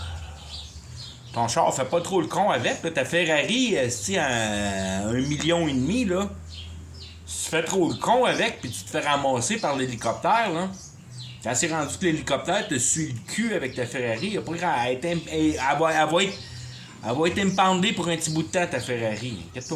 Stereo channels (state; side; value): identical; both; correlation 1.00